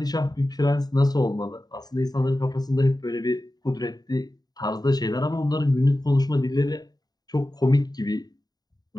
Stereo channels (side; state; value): right; late; 0.19 ms